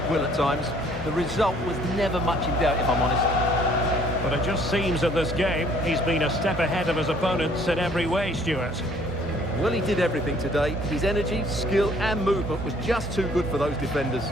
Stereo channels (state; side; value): normal; both; correlation 0.59